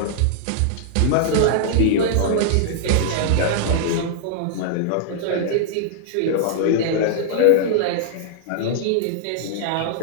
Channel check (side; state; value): both; different; correlation -0.01